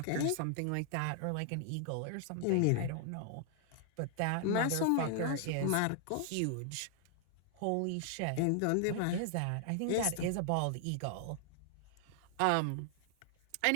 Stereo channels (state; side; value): different; both; correlation 0.00